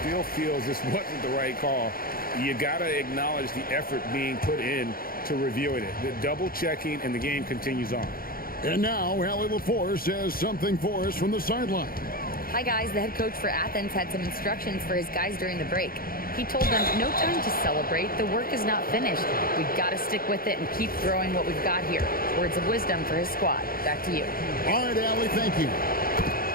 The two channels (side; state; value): right; late; 0.42 ms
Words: feels this wasn't the right call, you got to acknowledge the effort being put in to reviewing it. The double checking, and the game continues on. And now, Allie LaForce has something for us from the sideline. Hi, guys. The head coach for Athens had some instructions for his guys during the break. He told them, no time to celebrate. The work is not finished. We've got to stick with it and keep growing what we've got here. Words of wisdom for his squad. Back to you. All right, Allie, thank you.